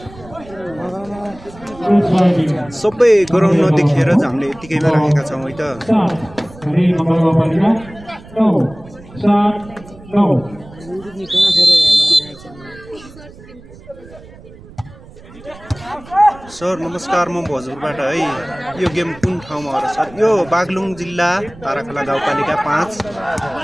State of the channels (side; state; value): right; noise; rumble, 20 dB below the sound